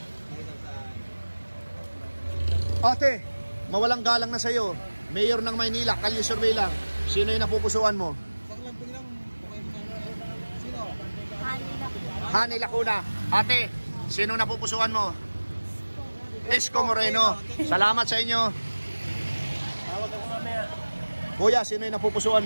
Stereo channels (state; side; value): inverted; both; correlation -1.00